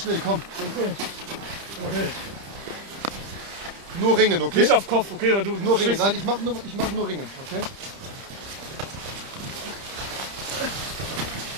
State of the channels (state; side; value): late; left; 30 ms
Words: komm. Okay. Nur Ringen, okay? Nicht auf Kopf, okay? Weil du Nur Ringen. stehst- Nein, ich mach nur Ringen, okay?